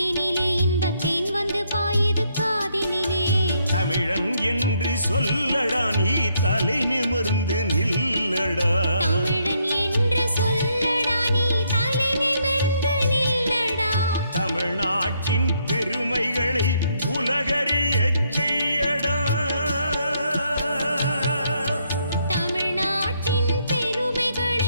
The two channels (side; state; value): both; inverted; correlation -0.73